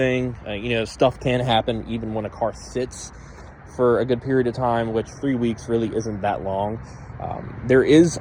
Stuff can happen even when a car sits for a good period of time, which 3 weeks really isn't that long. There is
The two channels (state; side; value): identical; both; correlation 1.00